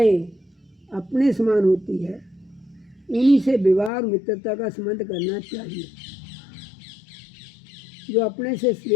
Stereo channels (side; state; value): right; drops out; at 3.9 s